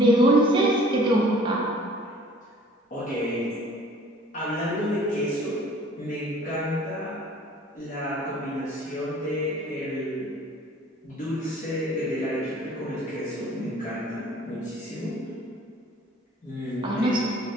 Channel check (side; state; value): both; normal; correlation 0.51